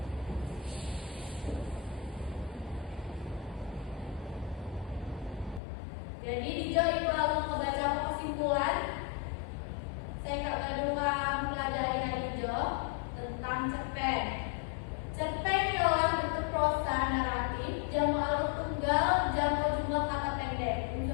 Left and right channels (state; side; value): drops out; right; at 5.6 s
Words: Jadi di ibu lalu membaca kesimpulan. Saya kak kedua mempelajari hari hijau tentang cerpen. Cerpen ialah bentuk prosa naratif, jamu alur tunggal, jamu jumlah kata pendek.